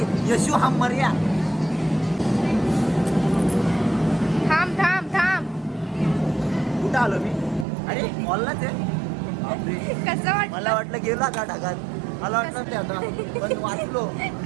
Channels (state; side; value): drops out; left; at 7.7 s